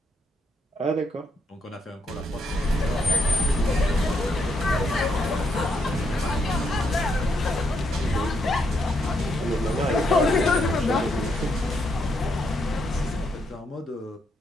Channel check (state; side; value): normal; both; correlation 0.77